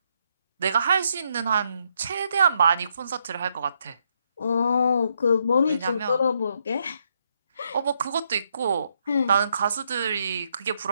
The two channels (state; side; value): inverted; both; correlation -0.76